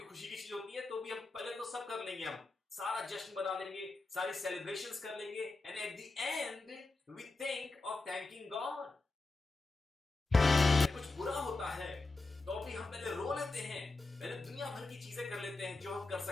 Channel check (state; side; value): quieter; right; 3.3 dB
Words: की चीज होती है तो भी हम पहले तो सब कर लेंगे, हम सारा जश्न बना लेंगे, सारी सेलिब्रेशंस कर लेंगे, and at the end we think of thanking God. कुछ बुरा होता है तो भी हम पहले रो लेते हैं, पहले दुनिया भर की चीजें कर लेते हैं जो हम कर